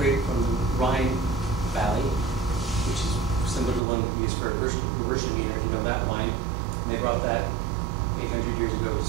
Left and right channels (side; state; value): left; drops out; at 3.8 s